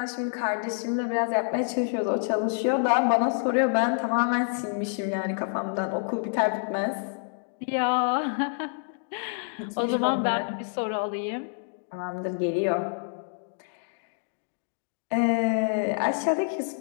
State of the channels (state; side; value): silent; right; digital silence